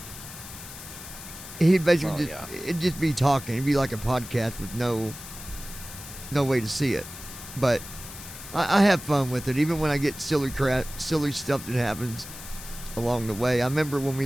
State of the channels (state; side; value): noise; left; hiss, 13 dB below the sound